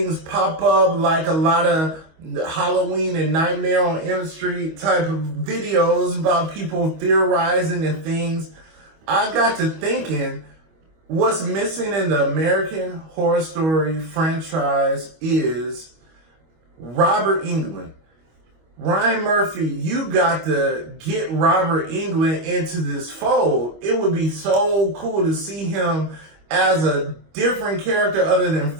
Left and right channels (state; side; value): late; left; 25 ms